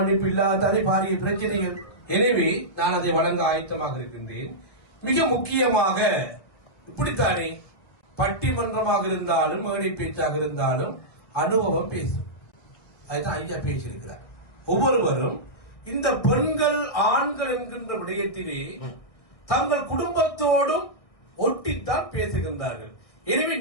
இல்லாதானே பாரிய பிரச்சனைகள். எனவே நான் அதை வழங்க ஆயத்தமாக இருக்கின்றேன். மிக முக்கியமாக இப்படித்தானே பட்டிமன்றமாக இருந்தாலும் மேடை பேச்சாக இருந்தாலும் அனுபவம் பேசும். அதுதான் ஐயா பேசியிருக்கிறார். ஒவ்வொருவரும் இந்த பெண்கள் ஆண்கள் என்கின்ற விடயத்திலே தங்கள் குடும்பத்தோடும் ஒட்டித்தான் பேசுகின்றார்கள். எனவே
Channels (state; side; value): late; right; 1.6 ms